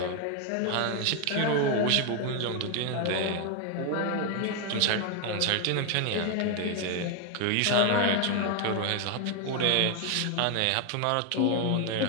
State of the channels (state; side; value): different; both; correlation 0.01